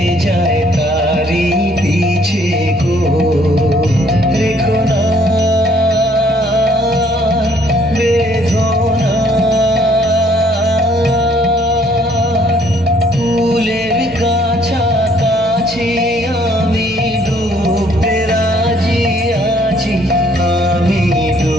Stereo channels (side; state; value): both; normal; correlation 0.63